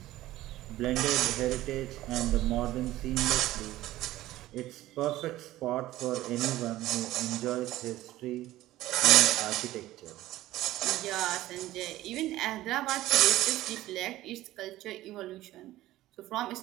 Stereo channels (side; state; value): left; quieter; 15.7 dB